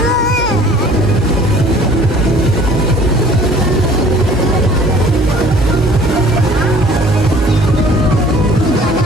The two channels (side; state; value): both; normal; correlation 0.51